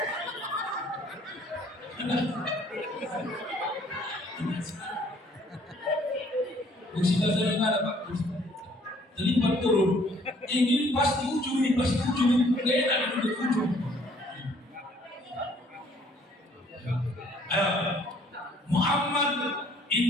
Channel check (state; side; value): normal; both; correlation 0.60